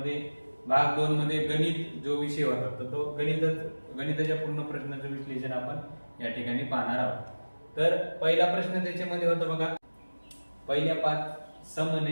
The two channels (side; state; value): both; inverted; correlation -1.00